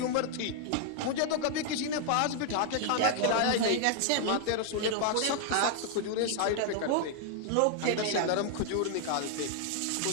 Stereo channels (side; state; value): both; different; correlation 0.00